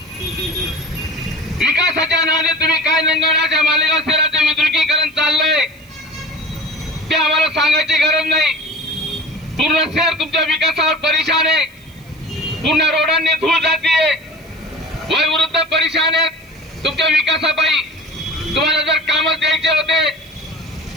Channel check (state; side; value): noise; right; hiss, 29 dB below the sound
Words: विकासाच्या नावाने तुम्ही काय नंगवण्याच्या मालेगाव शहराचे विद्रुकीकरण चाललंय ते आम्हाला सांगायची गरज नाही. पूर्ण शहर तुमच्या विकासावर परेशान आहे. पूर्ण रोडांनी धूळ जातीये. वयोवृद्ध परेशान आहेत तुमच्या विकासापायी. तुम्हाला जर कामच द्यायचे होते,